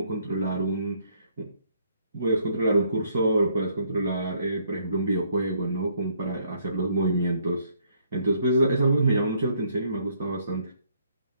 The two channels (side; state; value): both; inverted; correlation -0.67